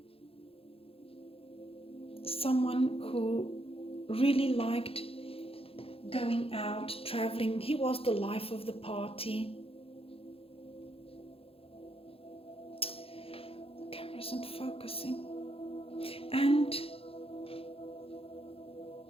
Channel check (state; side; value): late; right; 0.27 ms